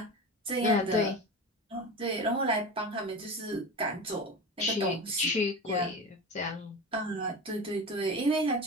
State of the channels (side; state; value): both; normal; correlation 0.28